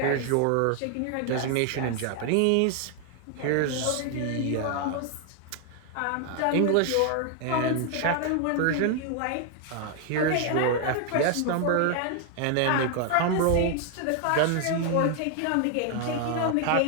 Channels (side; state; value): both; different; correlation 0.00